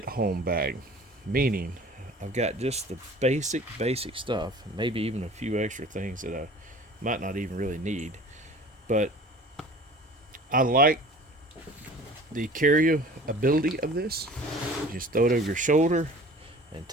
home bag, meaning I've got just the basic stuff, maybe even a few extra things that I might not even really need. But I like the carryability of this. You just throw it over your shoulder and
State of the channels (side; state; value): both; normal; correlation 0.44